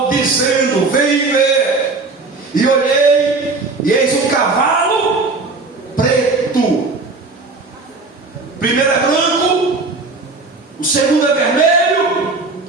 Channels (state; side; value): quieter; left; 3.7 dB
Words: dizendo: vem ver. E olhei, e eis um cavalo preto. Primeiro é branco, o segundo é vermelho,